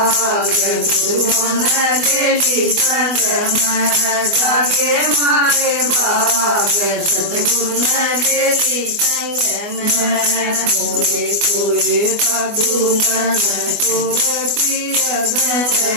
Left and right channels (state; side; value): late; left; 24 ms